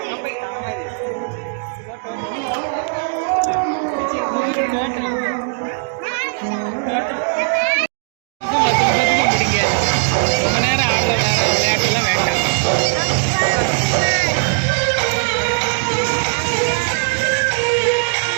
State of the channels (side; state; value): left; silent; digital silence